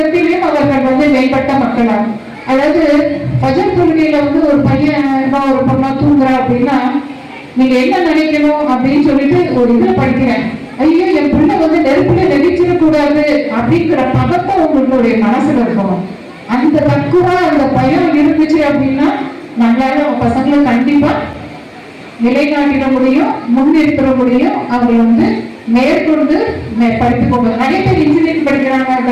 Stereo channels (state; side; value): identical; both; correlation 1.00